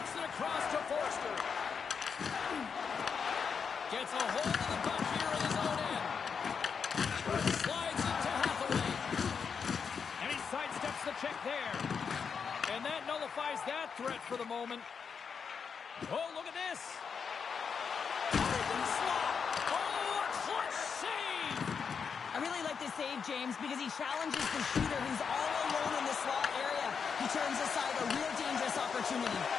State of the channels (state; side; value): quieter; right; 6.2 dB